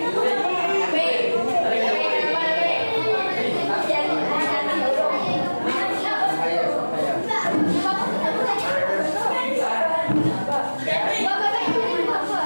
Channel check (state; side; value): inverted; both; correlation -1.00